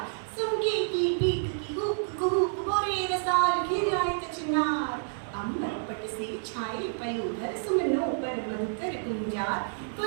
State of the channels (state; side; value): silent; left; digital silence